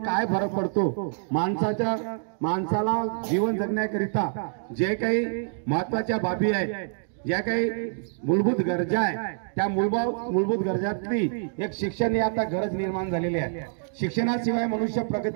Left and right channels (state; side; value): silent; left; digital silence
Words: काय फरक पडतो, माणसाला जीवन जगण्याकरिता जे काही महत्त्वाच्या बाबी आहेत, ज्या काही मूलभूत गरजा आहे, त्या मूलभूत गरजातली एक शिक्षण ही आता गरज निर्माण झालेली आहे। शिक्षणाशिवाय मनुष्य